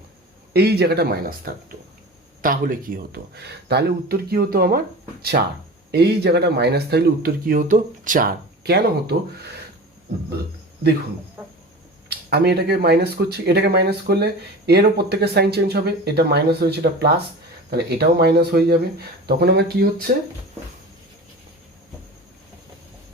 এই জায়গাটা মাইনাস থাকতো, তাহলে কি হতো, তাহলে উত্তর কি হতো আমার 4। এই জায়গাটা মাইনাস থাকলে উত্তর কি হতো 4। কেন হতো দেখুন, আমি এটাকে মাইনাস করছি, এটাকে মাইনাস করলে এরও প্রত্যেকের সাইন চেঞ্জ হবে, এটা মাইনাস হয়েছে এটা প্লাস, তাহলে এটাও মাইনাস হয়ে যাবে। তখন আমার কি হচ্ছে,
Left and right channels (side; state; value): both; normal; correlation 0.34